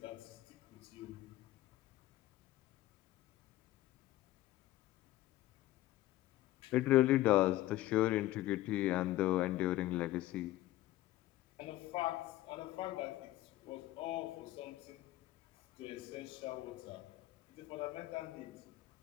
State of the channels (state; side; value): quieter; right; 15.9 dB